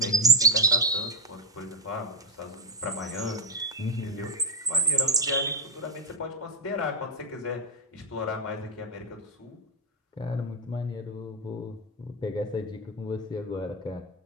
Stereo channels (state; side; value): normal; both; correlation 0.04